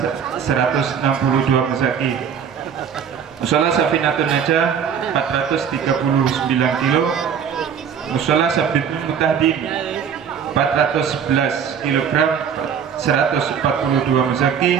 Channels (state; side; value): quieter; left; 7.6 dB